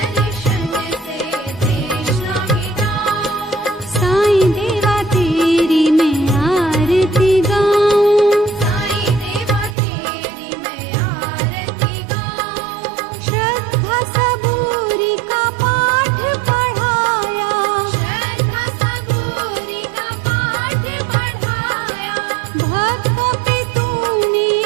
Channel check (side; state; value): left; drops out; at 9.8 s